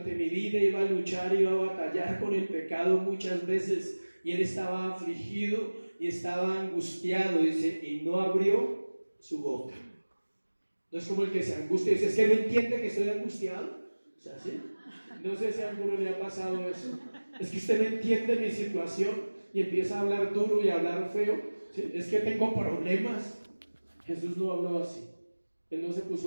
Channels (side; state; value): both; inverted; correlation -1.00